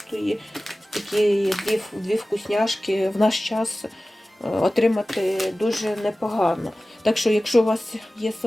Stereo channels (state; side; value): normal; both; correlation 0.96